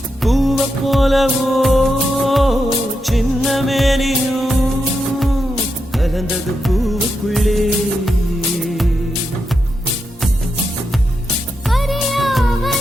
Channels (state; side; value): normal; both; correlation 0.85